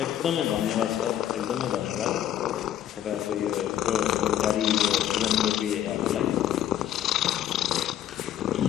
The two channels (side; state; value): right; quieter; 11.3 dB